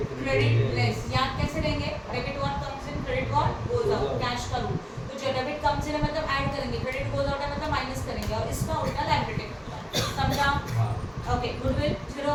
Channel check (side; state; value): both; identical; correlation 1.00